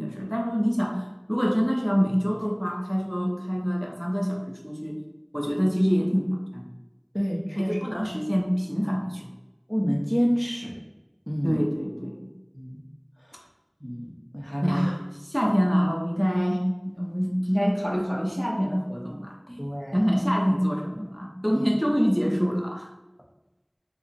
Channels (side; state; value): both; identical; correlation 1.00